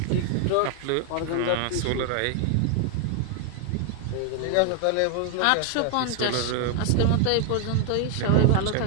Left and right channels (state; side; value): different; both; correlation 0.00